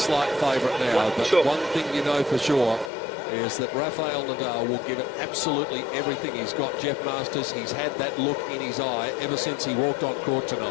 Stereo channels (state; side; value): drops out; right; at 2.9 s